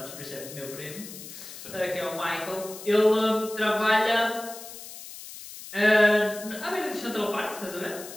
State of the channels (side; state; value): left; noise; hiss, 13 dB below the sound